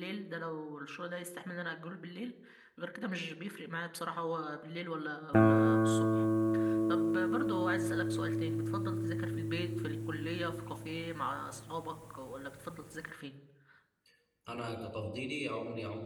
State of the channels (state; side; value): identical; both; correlation 1.00